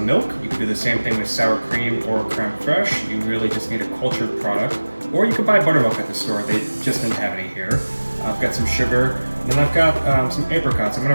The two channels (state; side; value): inverted; both; correlation -1.00